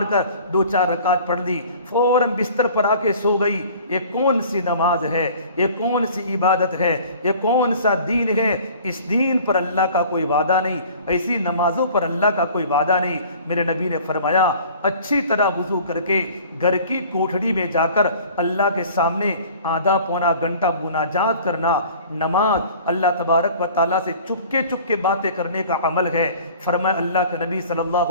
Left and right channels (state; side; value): inverted; both; correlation -0.47